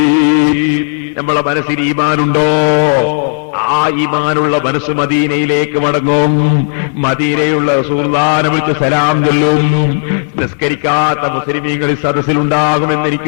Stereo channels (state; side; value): silent; right; digital silence